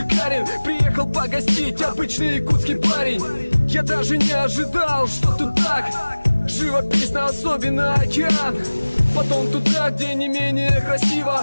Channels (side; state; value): both; inverted; correlation -1.00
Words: Приехал погостить обычный якутский парень. Я даже не ожидал, что тут так живописно, особенно океан. Потом туда, где не менее